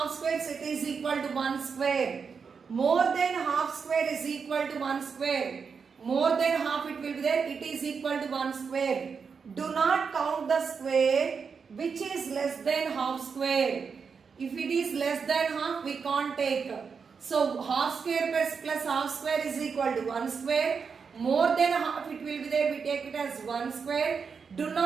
squares, it is equal to 1 square. More than half square is equal to 1 square. More than half it will be there, it is equal to 1 square. Do not count the square which is less than half square. If it is less than half, we can't take. So half square plus half square is equal to 1 square. More than half it will be there, we take it as 1 square. Do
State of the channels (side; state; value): left; quieter; 5.8 dB